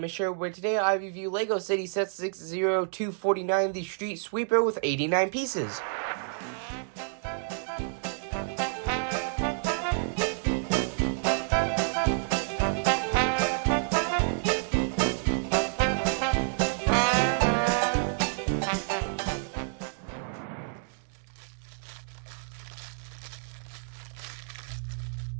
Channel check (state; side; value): silent; left; digital silence